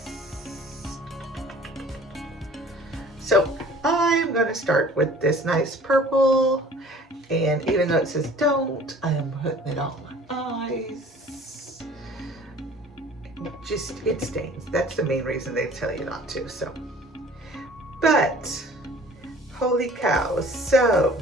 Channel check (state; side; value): normal; both; correlation 0.49